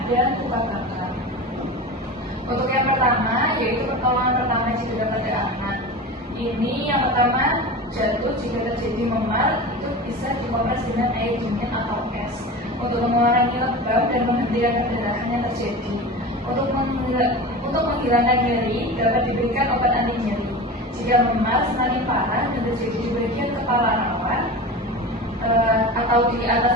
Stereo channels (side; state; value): both; normal; correlation 0.30